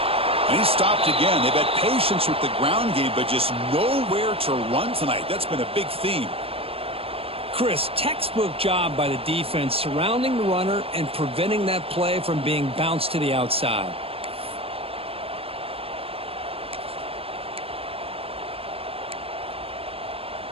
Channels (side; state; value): left; late; 0.28 ms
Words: And he's stopped again. They've had patience with the ground game, but just nowhere to run tonight. That's been a big theme. Chris, textbook job by the defense surrounding the runner and preventing that play from being bounced to the outside.